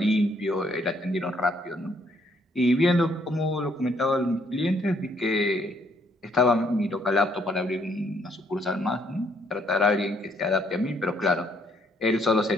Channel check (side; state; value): both; normal; correlation 0.68